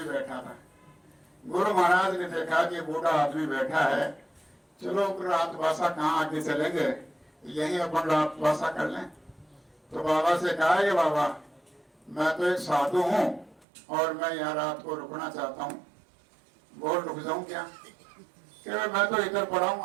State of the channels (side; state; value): left; drops out; at 13.7 s